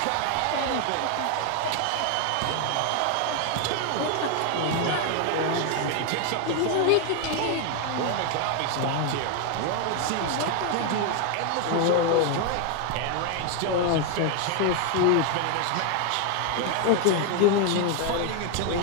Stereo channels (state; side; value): different; both; correlation 0.01